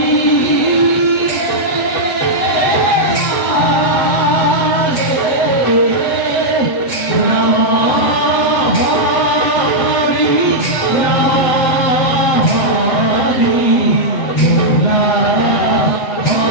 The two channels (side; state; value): right; late; 7.8 ms